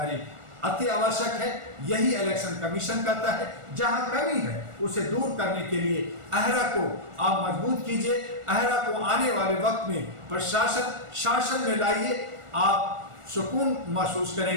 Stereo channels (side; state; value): left; late; 1.4 ms